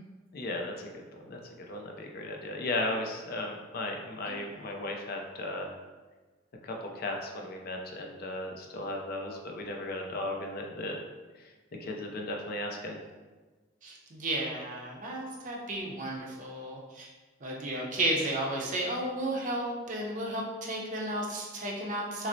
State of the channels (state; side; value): normal; both; correlation 0.12